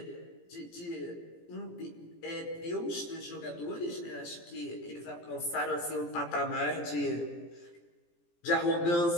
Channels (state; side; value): late; right; 17 ms